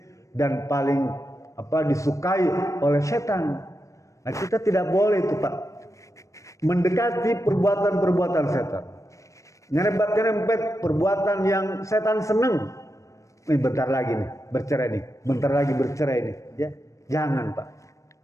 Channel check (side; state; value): right; late; 0.15 ms